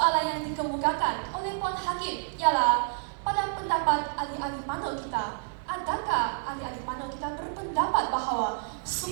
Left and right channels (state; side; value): silent; left; 59 dB below the other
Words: yang dikemukakan oleh Puan Hakim ialah pada pendapat ahli-ahli panel kita, adakah ahli-ahli panel kita berpendapat bahawa